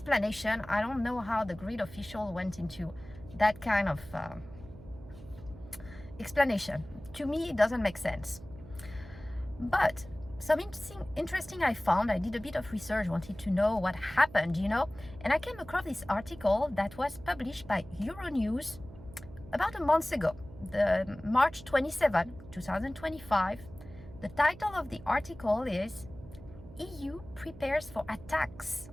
I don't know how the grid official went into that kind of explanation. To me, it doesn't make sense. But some interesting I found. I did a bit of research, wanted to know what happened, and I came across this article that was published by Euronews about a month ago. The March 27, 2025. The title of the article is EU prepares for attacks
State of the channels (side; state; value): right; noise; hum, 17 dB below the sound